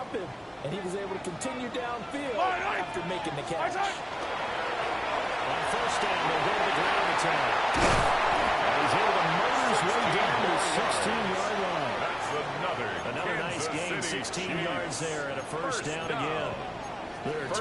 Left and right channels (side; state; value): both; identical; correlation 1.00